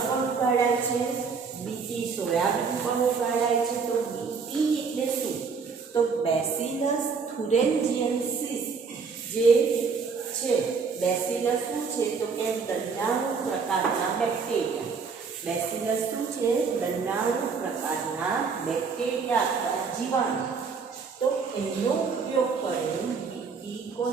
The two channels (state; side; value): quieter; left; 5.3 dB